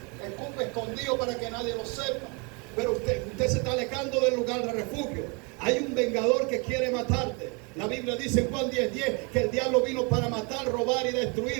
escupe escondido para que nadie lo sepa. Pero usted se está alejando del lugar de refugio. Hay un vengador que quiere matarte. La Biblia dice en Juan 10:10 que el diablo vino para matar, robar y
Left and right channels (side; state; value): left; quieter; 31.7 dB